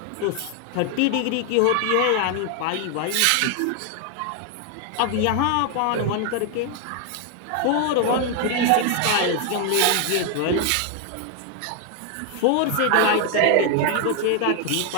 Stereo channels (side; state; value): both; different; correlation 0.00